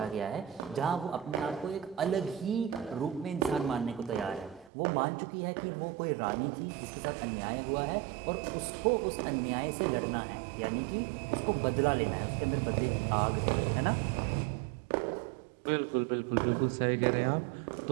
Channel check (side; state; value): left; drops out; at 4.7 s